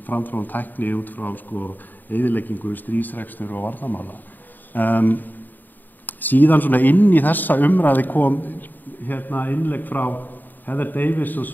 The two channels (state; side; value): late; right; 0.088 ms